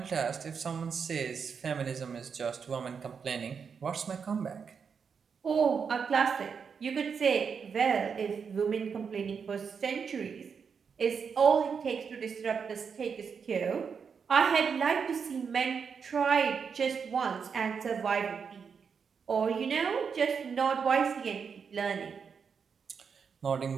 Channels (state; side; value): quieter; left; 6.2 dB